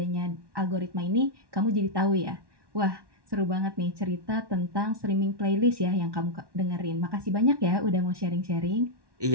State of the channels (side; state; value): left; late; 1.1 ms